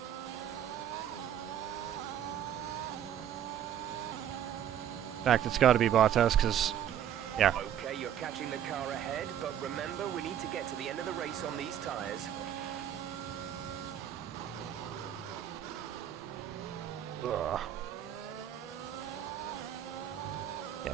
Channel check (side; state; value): left; quieter; 10.1 dB